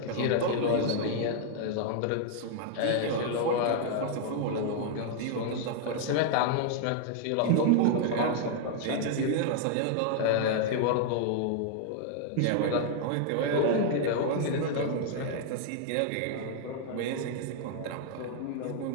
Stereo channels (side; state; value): both; different; correlation 0.00